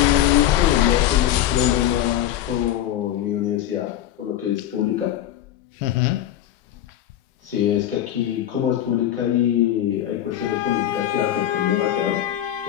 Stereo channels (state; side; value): quieter; right; 11.9 dB